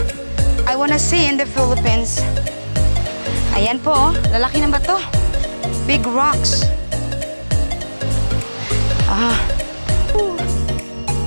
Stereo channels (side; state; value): both; inverted; correlation -1.00